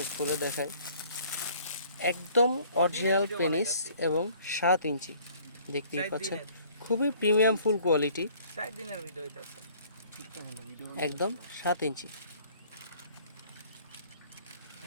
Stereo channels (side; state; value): both; inverted; correlation -0.56